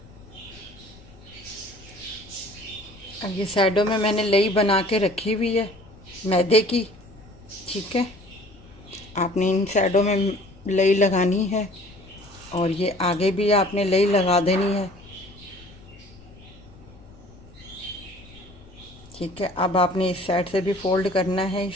अब ये साइडों में मैंने लई बना के रखी हुई है मैदे की। ठीक है, आपने इन साइडों में लई लगानी है और ये आगे भी आपने लई लगा देनी है। ठीक है, अब आपने इस साइड से भी फोल्ड करना है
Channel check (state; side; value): noise; left; rumble, 22 dB below the sound